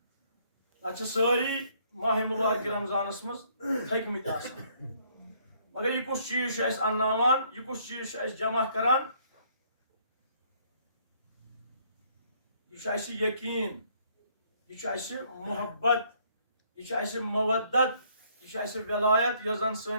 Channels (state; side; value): inverted; both; correlation -0.65